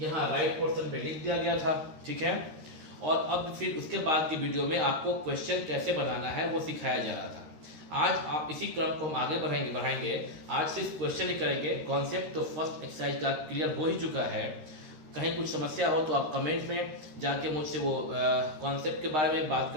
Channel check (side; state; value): left; late; 13 ms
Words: राइट पोर्शन पे लिख दिया गया था, ठीक है। और अब फिर उसके बाद की वीडियो में आपको क्वेश्चन कैसे बनाना है वो सिखाया जा रहा था। आज आप इसी क्रम को हम आगे बढ़ाएंगे। आज सिर्फ क्वेश्चन ही करेंगे, कॉन्सेप्ट तो फर्स्ट एक्सरसाइज का क्लियर हो ही चुका है। कहीं कुछ समस्या हो तो आप कमेंट में जाके मुझसे वो कॉन्सेप्ट के बारे में बात